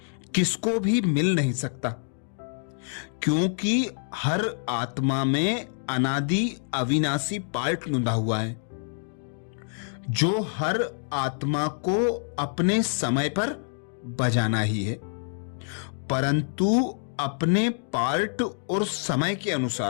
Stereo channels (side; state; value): right; silent; digital silence